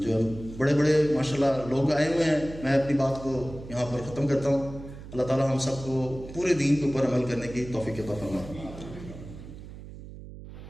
بڑے بڑے ماشاءاللہ لوگ آئے ہوئے ہیں، میں اپنی بات کو یہاں پر ختم کرتا ہوں۔ اللہ تعالیٰ ہم سب کو پورے دین کے اوپر عمل کرنے کی توفیق عطا فرمائے۔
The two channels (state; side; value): noise; right; hum, 14 dB below the sound